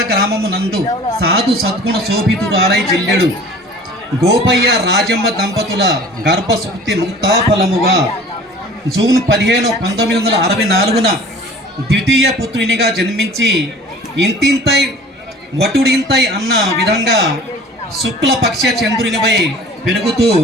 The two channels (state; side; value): normal; both; correlation 0.46